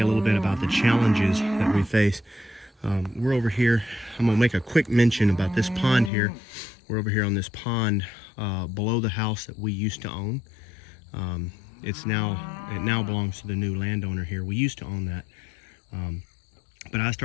a little bit about the challenges that we face. We're over here. I'm gonna make a quick mention about this pond here. We're over here on this pond below the house that we used to own. It now belongs to the new landowner here. We used to own that. But I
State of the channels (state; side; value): drops out; right; at 6.1 s